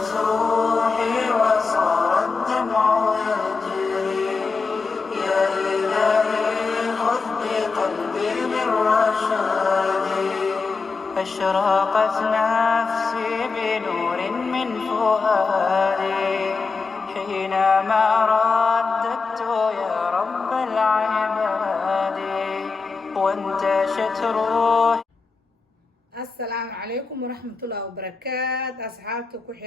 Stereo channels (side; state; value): right; quieter; 4.5 dB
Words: روحي وصار الدمع يجري يا إلهي خذ بقلبي بالرشاد أشرقت نفسي بنور من فؤادي حينما رددت يا رب العباد وانتشت روحي. السلام عليكم ورحمة الله وبركاته أصحابتي